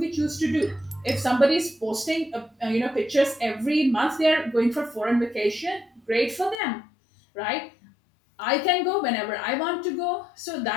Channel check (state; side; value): drops out; right; at 6.6 s